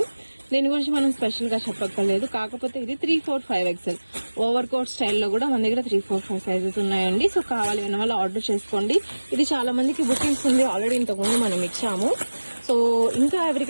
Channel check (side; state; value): both; inverted; correlation -1.00